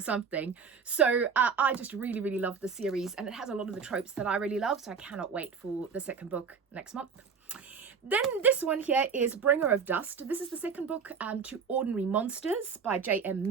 something. So I just really love the series, and it has a lot of the tropes that I really love, so I cannot wait for the second book next month. Then this one here is Bringer of Dust. This is the second book to Ordinary Monsters by J.M.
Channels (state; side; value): quieter; left; 6.0 dB